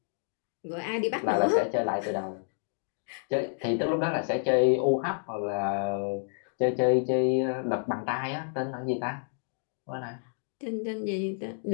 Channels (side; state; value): right; silent; digital silence